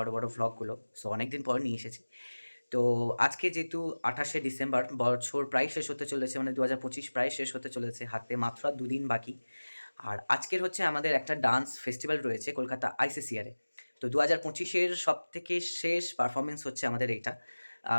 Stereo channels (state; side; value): inverted; both; correlation -1.00